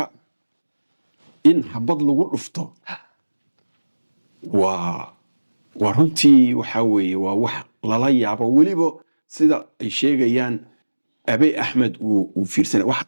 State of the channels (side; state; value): both; inverted; correlation -1.00